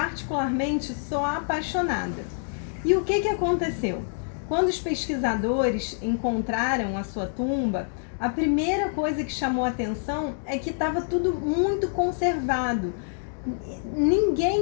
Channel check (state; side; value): silent; right; digital silence